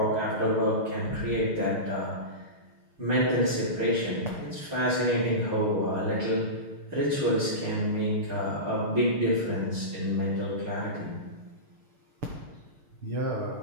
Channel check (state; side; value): late; left; 6.5 ms